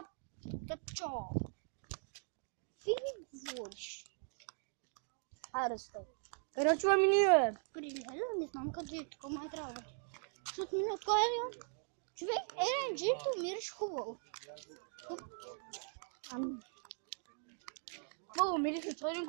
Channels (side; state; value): left; silent; 51 dB below the other